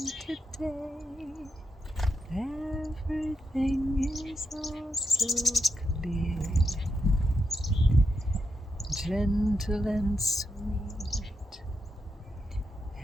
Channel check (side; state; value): both; normal; correlation 0.85